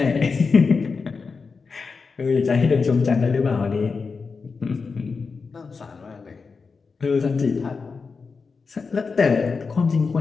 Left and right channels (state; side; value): quieter; right; 4.8 dB